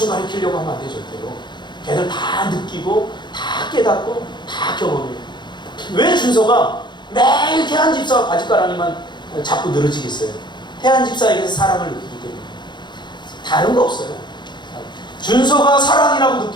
가르치려고 하면 안 되죠. 걔들 다 느끼고 다 깨닫고 다 경험해요. 왜 준서가 매일 태한 집사와 바짓가랑이만 자꾸 늘어지겠어요? 태한 집사에게서 사랑을 느끼기 때문에. 다른 거 없어요. 준서가 사랑이라고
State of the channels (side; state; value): right; late; 0.22 ms